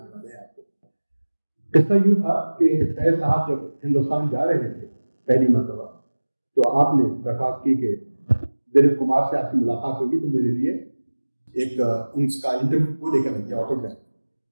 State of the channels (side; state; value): both; inverted; correlation -1.00